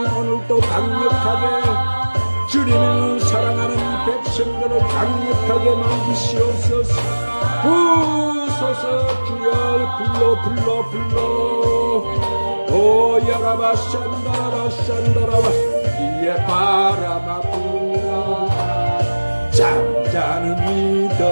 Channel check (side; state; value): both; inverted; correlation -1.00